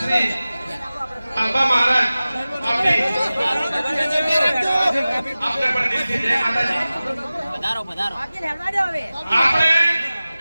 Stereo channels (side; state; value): both; inverted; correlation -0.97